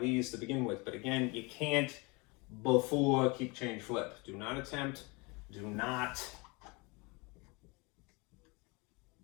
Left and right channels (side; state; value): right; quieter; 27.6 dB